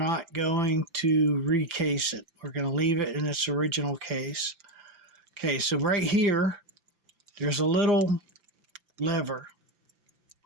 going to recase it. We're going to leave it in its original case. Okay, so right here, there's a little lever,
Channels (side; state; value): left; late; 5.9 ms